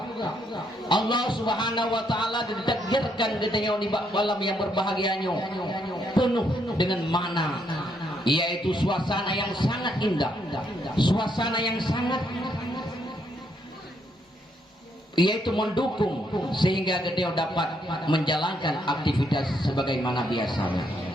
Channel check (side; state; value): both; normal; correlation 0.74